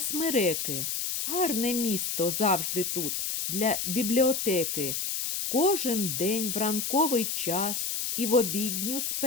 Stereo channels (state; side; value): noise; left; hiss, 2 dB below the sound